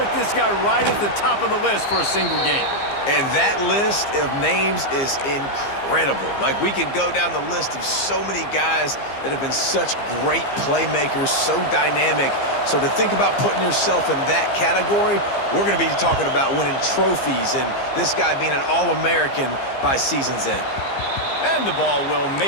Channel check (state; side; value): late; right; 15 ms